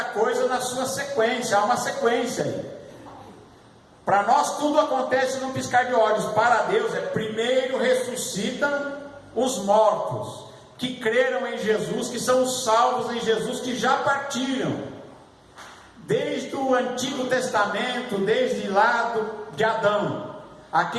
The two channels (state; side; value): identical; both; correlation 1.00